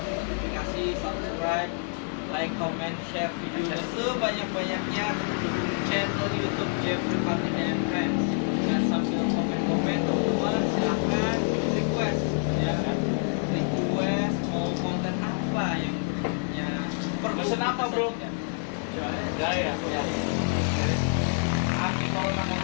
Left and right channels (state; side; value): silent; right; 60 dB below the other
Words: notifikasi, subscribe, like, comment, share videonya sebanyak-banyaknya, terus dukung channel YouTube Jeffrey Patina and Friends. Dan sambil komen-komen teman-teman silahkan request ya, request mau konten apa yang berikutnya. Pesen apa, bro? Gaya. Anti corona